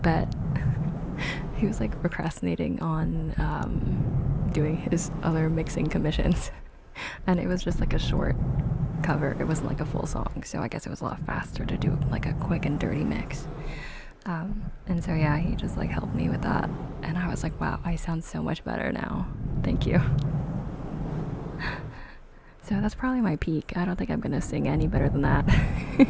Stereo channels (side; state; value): both; identical; correlation 1.00